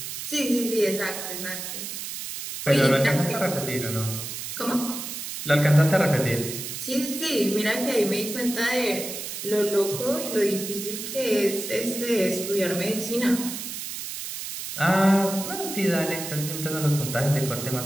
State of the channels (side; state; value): right; noise; hiss, 7 dB below the sound